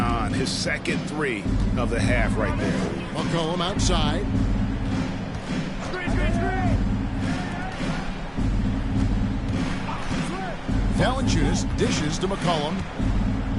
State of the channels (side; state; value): both; identical; correlation 1.00